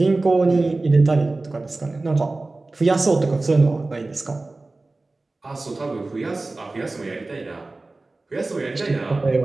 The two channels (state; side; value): quieter; left; 3.2 dB